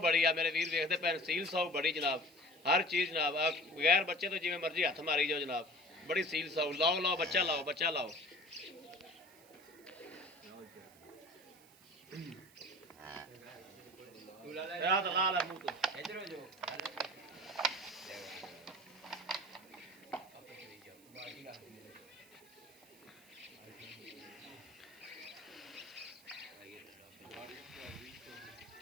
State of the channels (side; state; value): right; noise; hiss, 25 dB below the sound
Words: बड़ी आ मेरे वीर वेखते पे सील साऊ बड़ी जनाब, हर चीज़ जनाब बगैर बच्चे तो जिवें मर्जी हथ मारी जाओ जनाब, बड़ी सील साऊ। लाओ लाओ बच्चा लाओ, बच्चा लाओ। ला ला मुंह तो इधर हो जाओ।